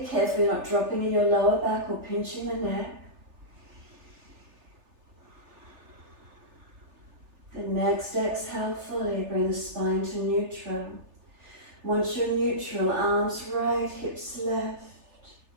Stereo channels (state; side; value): late; left; 3.3 ms